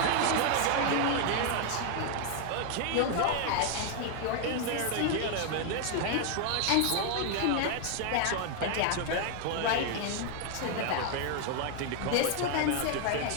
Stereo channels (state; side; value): different; both; correlation 0.00